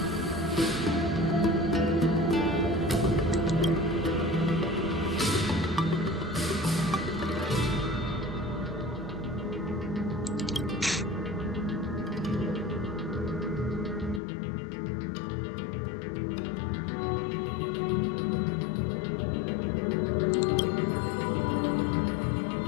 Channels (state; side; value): drops out; right; at 14.2 s